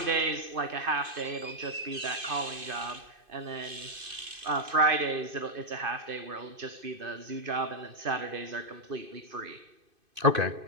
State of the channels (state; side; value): late; left; 2.5 ms